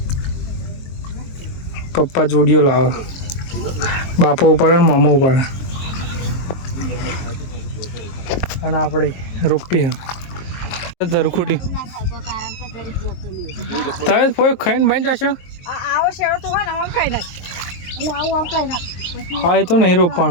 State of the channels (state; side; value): late; right; 23 ms